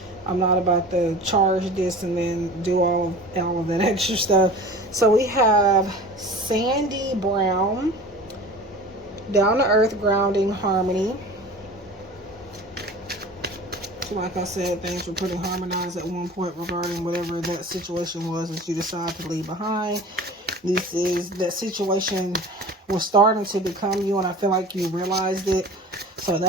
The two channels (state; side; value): normal; both; correlation 0.39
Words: I'm not about to charge this and then do all of that extra stuff. So we have Sandy Brown, Down to Earth, Grounding, Harmony. So like I said, things were pretty harmonized at one point regarding whatever that situation was that you decided to leave behind. This is that situation was starting to become you, and I feel like you realized it. So